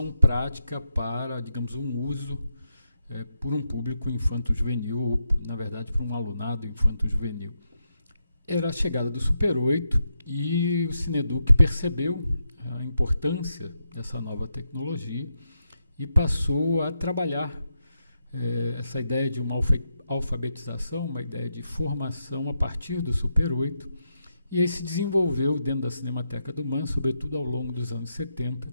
prática para, digamos, um uso por um público infanto-juvenil, ou, na verdade, por um alunado infanto-juvenil. Era a chegada do Super 8 e o Cineduc percebeu a importância dessa nova tecnologia e passou a trabalhar essa ideia de uma alfabetização, uma ideia de formação a partir do Super 8, e aí se desenvolveu dentro da Cinemateca do MAN, sobretudo ao longo dos anos 70,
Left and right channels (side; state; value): both; inverted; correlation -0.84